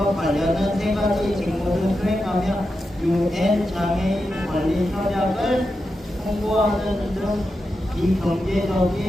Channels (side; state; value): both; normal; correlation 0.89